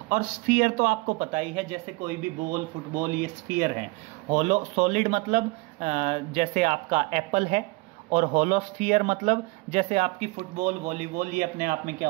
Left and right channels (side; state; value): left; quieter; 25.0 dB